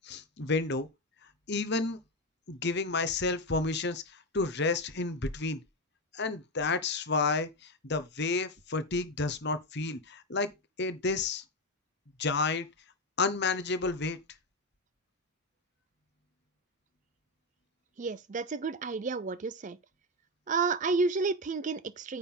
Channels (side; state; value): both; normal; correlation 0.12